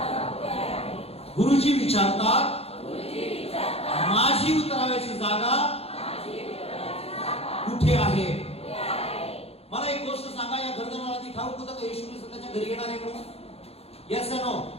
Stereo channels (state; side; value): late; right; 0.29 ms